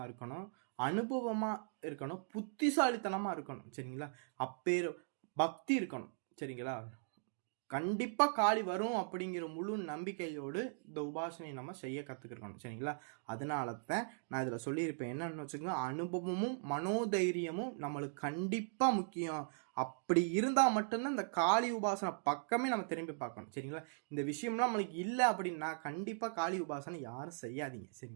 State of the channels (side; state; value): left; silent; digital silence